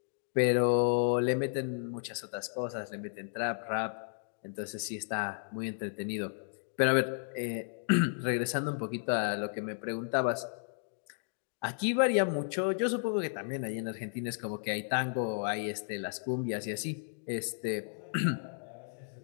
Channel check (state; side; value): silent; right; digital silence